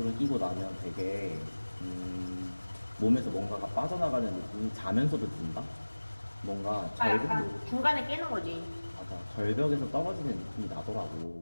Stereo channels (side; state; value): both; inverted; correlation -1.00